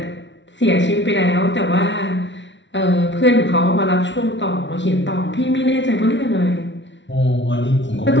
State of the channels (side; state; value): right; late; 0.53 ms